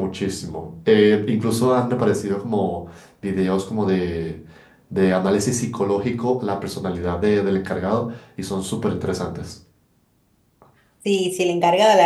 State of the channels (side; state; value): both; identical; correlation 1.00